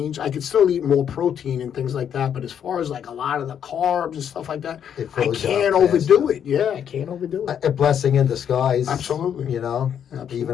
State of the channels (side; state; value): right; quieter; 8.7 dB